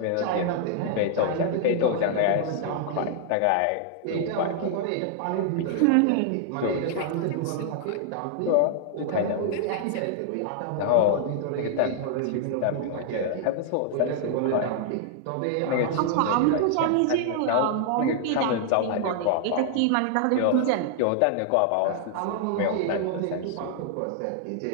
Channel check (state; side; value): different; both; correlation -0.01